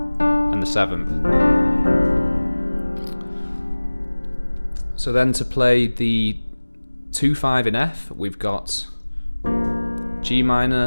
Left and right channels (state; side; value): inverted; both; correlation -1.00